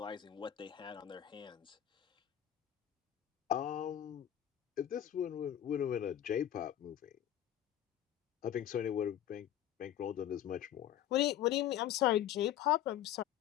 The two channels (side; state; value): right; quieter; 11.4 dB